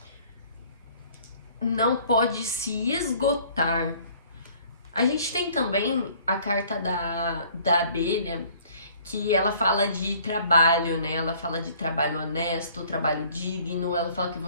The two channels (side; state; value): both; inverted; correlation -0.55